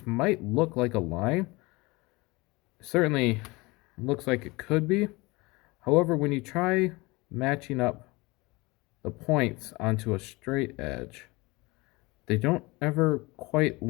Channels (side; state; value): right; quieter; 23.7 dB